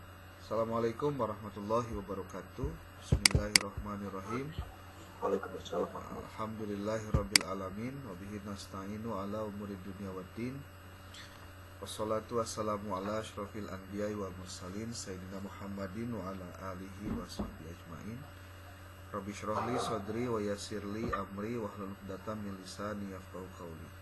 Assalamualaikum warahmatullahi wabarakatuh. Bismillahirrahmanirrahim. Waalaikumsalam. Alhamdulillahirabbil alamin wa bihi nasta'inu ala umuri dunya waddin. Wassalatu wassalamu ala asyrafil anbiya'i wa mursalin sayyidina Muhammadin wa ala alihi wa sahbihi ajmain. Rabbi shrah li sadri wa yassir li amri wahlul 'uqdatam min lisani yafqahu qawli.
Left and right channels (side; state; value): both; identical; correlation 1.00